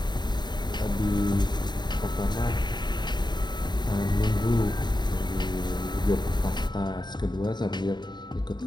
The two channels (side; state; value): right; late; 0.21 ms